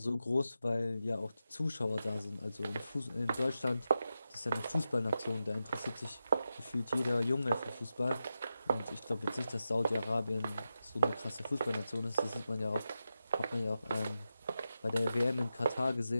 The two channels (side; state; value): both; inverted; correlation -0.89